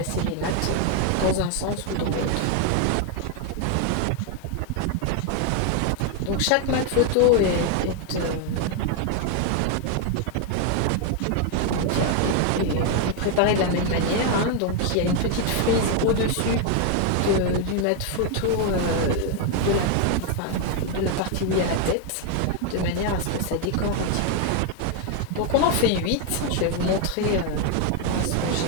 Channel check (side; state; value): both; different; correlation 0.01